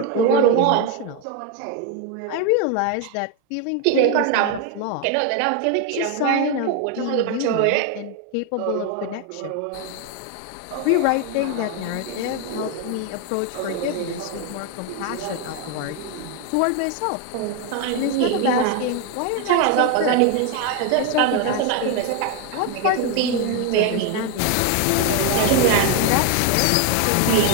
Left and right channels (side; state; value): both; different; correlation 0.01